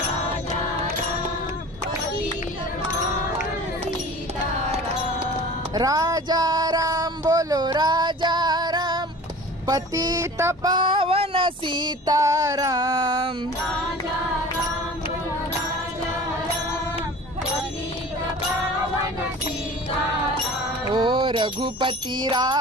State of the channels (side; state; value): both; normal; correlation 0.41